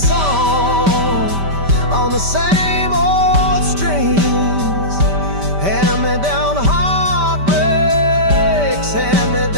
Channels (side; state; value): left; late; 5.1 ms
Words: on the same old strings. Hand-me-down heartbreaks,